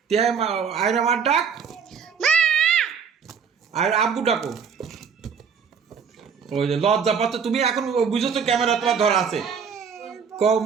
আয়রা মার ডাক, আর আব্বু ডাকো। ওই যে লজ্জা পাচ্ছ তুমি, এখন বুঝেছো ক্যামেরা তোমার ধরা আছে। কও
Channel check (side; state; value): left; quieter; 6.5 dB